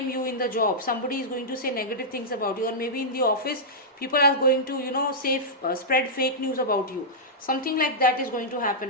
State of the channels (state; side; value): normal; both; correlation -0.11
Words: you in the job. Somebody is going to say negative things about you, or maybe in the office people are going to say spread fake news about you. Something like that is going to